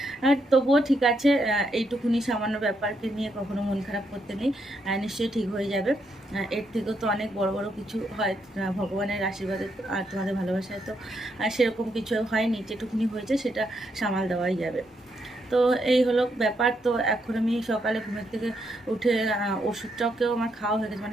আর তবুও ঠিক আছে, এইটুকুনি সামান্য ব্যাপারকে নিয়ে কখনো মন খারাপ করতে নেই, নিশ্চয়ই ঠিক হয়ে যাবে। এর থেকেও তো অনেক বড় বড় কিছু হয় ভগবানের আশীর্বাদে আর তোমাদের ভালোবাসায়। তো সেরকম কিছু হয়নি, যেটুকুনি হয়েছে সেটা সামাল দেওয়াই যাবে। তো এই হলো ব্যাপার। তো এখন আমি সকালে ঘুমের থেকে উঠে ওষুধটাকেও আমার খাওয়া হয়ে গেছে,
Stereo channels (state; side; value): normal; both; correlation 0.78